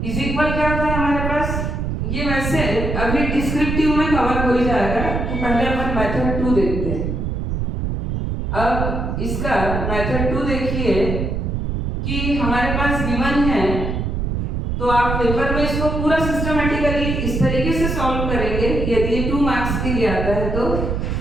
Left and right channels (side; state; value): right; noise; rumble, 2 dB below the sound